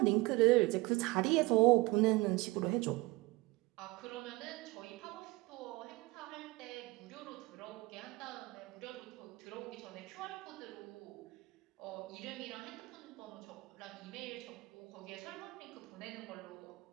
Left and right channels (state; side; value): quieter; left; 21.4 dB